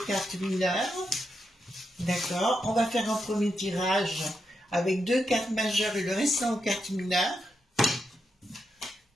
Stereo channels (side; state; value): both; normal; correlation 0.84